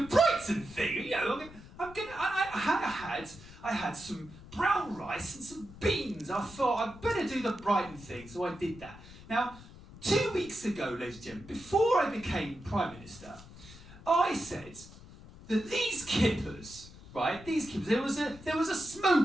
Brighton thing. You know, I had some brown rice and some beans. I thought I'd better do the Brighton thing, so I did that. Now, 2 weeks ago, ladies and gentlemen, before I became Prime Minister, I said that these kippers, right, there was a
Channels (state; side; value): noise; left; rumble, 18 dB below the sound